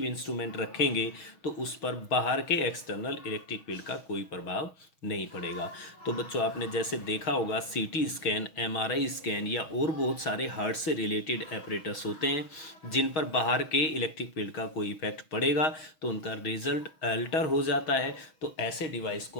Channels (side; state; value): right; late; 6.3 ms